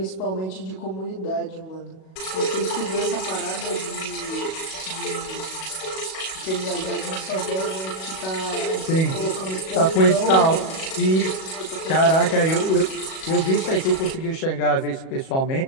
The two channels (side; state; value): right; late; 37 ms